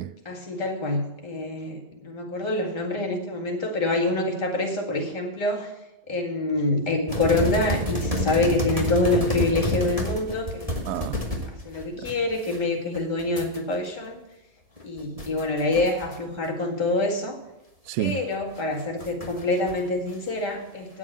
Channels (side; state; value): left; late; 1.7 ms